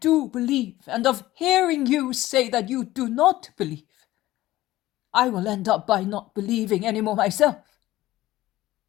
believe, and of hearing you say that you do not believe, I will end up by not believing any more myself.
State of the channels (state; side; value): quieter; right; 16.2 dB